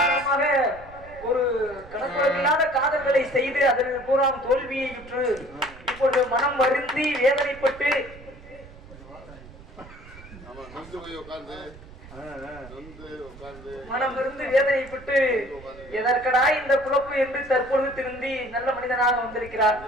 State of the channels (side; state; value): right; noise; rumble, 19 dB below the sound